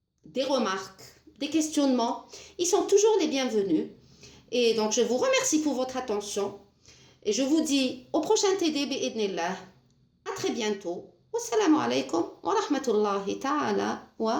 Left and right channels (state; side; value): identical; both; correlation 1.00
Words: des remarques, des questionnements, ils sont toujours les bienvenus. Et donc, je vous remercie pour votre attention. Et je vous dis au prochain TD bi'idnillah. À très bientôt. Wassalamu alaikum wa rahmatullahi ta'ala